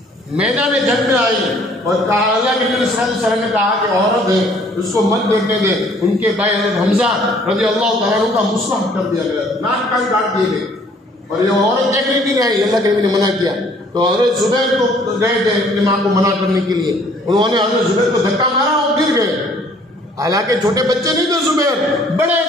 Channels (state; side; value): normal; both; correlation 0.59